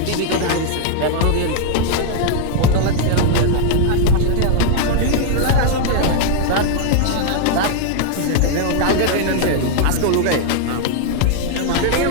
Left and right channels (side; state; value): both; different; correlation 0.00